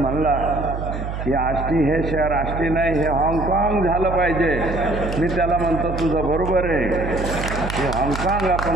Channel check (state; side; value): noise; right; hum, 6 dB below the sound